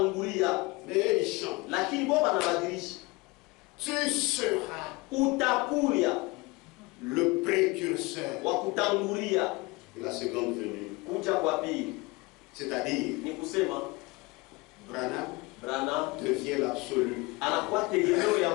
Mais il chante. lakini bo banabadilisha. Tu seras Utakuya le précurseur wa kutangulia de la seconde venue. kuja kwa pili. C'est-à-dire, Ni kusema Branham devient l'absolu. anakuwa tegemeo ya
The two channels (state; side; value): quieter; right; 24.3 dB